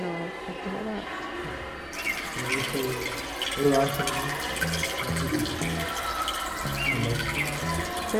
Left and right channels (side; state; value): both; identical; correlation 1.00